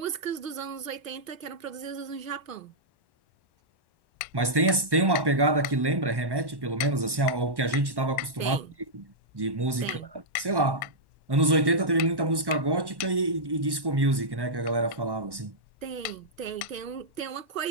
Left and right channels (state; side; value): late; left; 1.1 ms